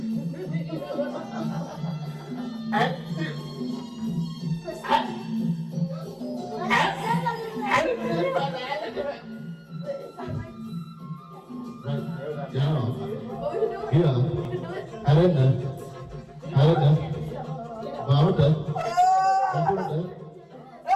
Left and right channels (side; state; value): both; identical; correlation 1.00